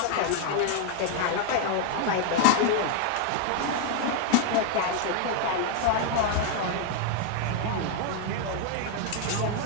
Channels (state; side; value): different; both; correlation 0.00